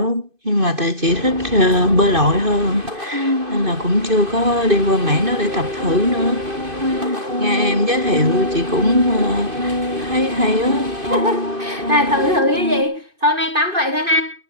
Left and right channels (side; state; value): left; late; 2.5 ms